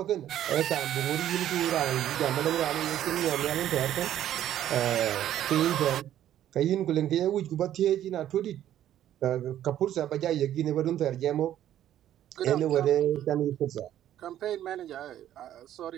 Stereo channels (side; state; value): left; quieter; 11.7 dB